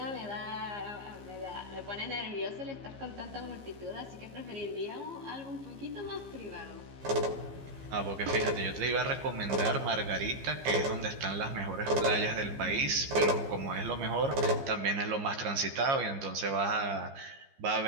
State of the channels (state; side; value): late; left; 15 ms